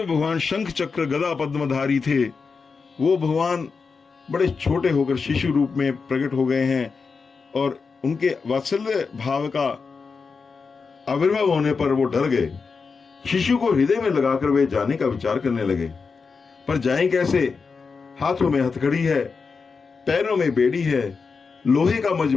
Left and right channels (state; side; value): quieter; right; 5.0 dB